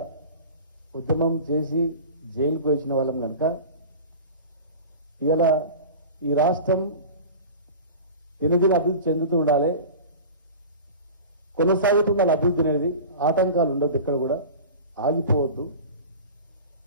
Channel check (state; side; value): inverted; both; correlation -0.36